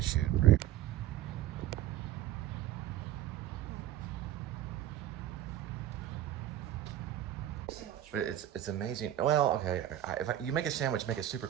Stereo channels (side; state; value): left; quieter; 12.3 dB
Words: shoot, right? But it's amazing. Well, okay, if you make a sandwich, make it super